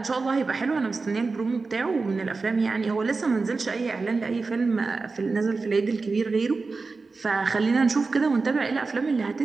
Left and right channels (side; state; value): left; quieter; 4.1 dB